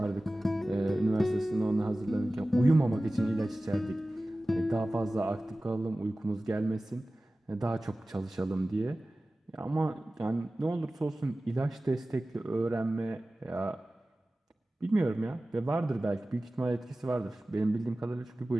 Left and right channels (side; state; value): both; normal; correlation 0.97